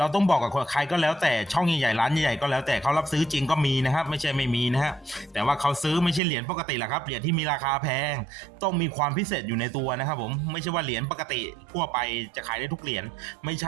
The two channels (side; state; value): left; drops out; at 6.2 s